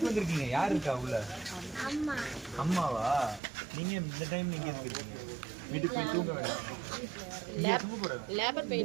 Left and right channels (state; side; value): drops out; left; at 3.4 s